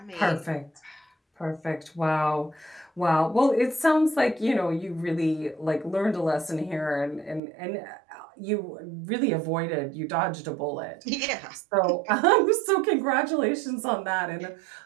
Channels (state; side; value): drops out; left; at 7.4 s